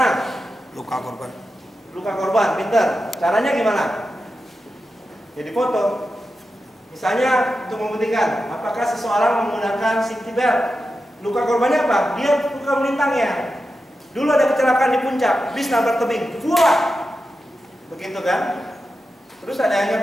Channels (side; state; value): both; normal; correlation 0.90